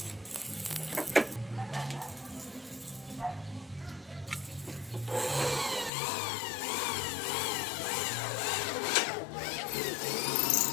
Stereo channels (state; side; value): drops out; right; at 5.9 s